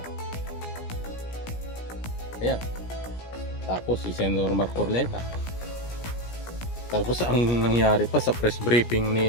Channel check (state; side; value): late; right; 17 ms